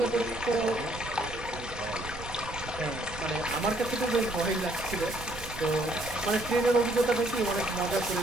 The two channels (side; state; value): right; noise; rumble, 12 dB below the sound